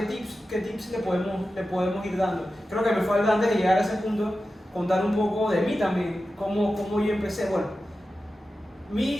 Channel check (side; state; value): both; normal; correlation 0.93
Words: tips le podemos ir dando? Creo que me falta antes de llegar a ese punto contar un poco de mí también, cómo yo empecé. Bueno, mi